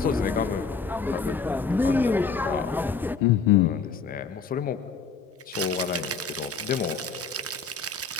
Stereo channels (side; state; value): right; quieter; 5.3 dB